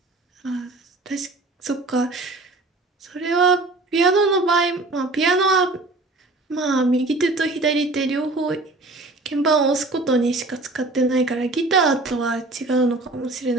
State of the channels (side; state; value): left; quieter; 3.0 dB